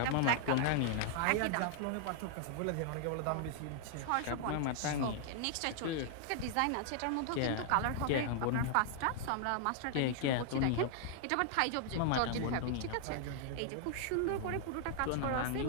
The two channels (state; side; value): different; both; correlation -0.01